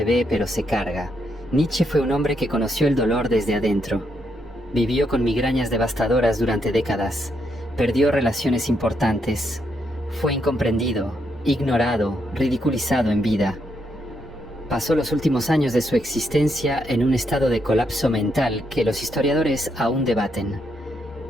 ve pero se carga. Nietzsche fue un hombre que conoció el dolor desde adentro. Vivió con migrañas devastadoras durante décadas. Perdió relaciones importantes. Fue incomprendido, ignorado, ridiculizado en vida. Pasó los últimos años de su existencia en un estado de colapso mental que los historiadores aún debaten.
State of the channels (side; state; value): both; normal; correlation 0.78